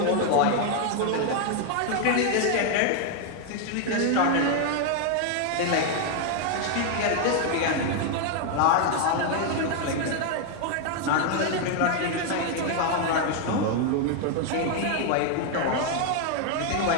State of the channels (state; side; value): different; both; correlation 0.00